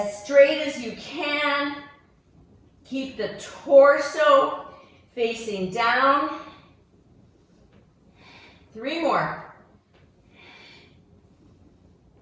straight as you can. Keep the torso facing down. 3 more.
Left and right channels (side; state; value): both; identical; correlation 1.00